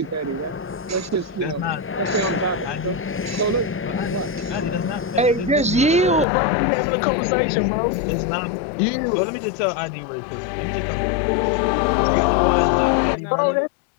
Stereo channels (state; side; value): drops out; right; at 6.2 s